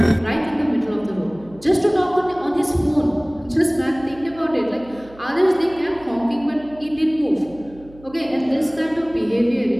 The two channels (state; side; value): noise; right; hum, 22 dB below the sound